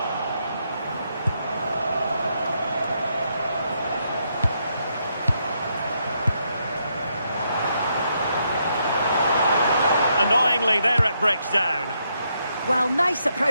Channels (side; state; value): both; inverted; correlation -0.78